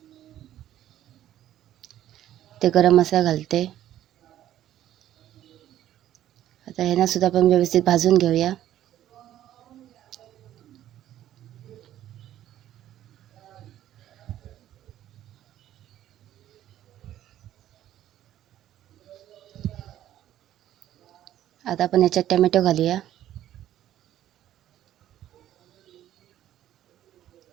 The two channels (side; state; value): left; quieter; 12.3 dB